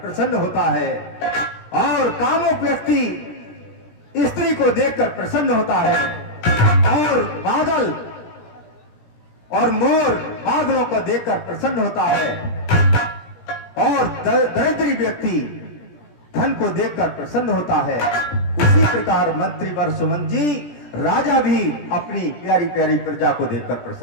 होता है और कामुक व्यक्ति स्त्री को देखकर प्रसन्न होता है, और बादल और मोर बादलों को देखकर प्रसन्न होता है, और दरिद्री व्यक्ति धन को देखकर प्रसन्न होता है। उसी प्रकार मंत्री वर सुमन जी, राजा भी अपनी प्यारी प्यारी प्रजा को देखकर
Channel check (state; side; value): late; right; 17 ms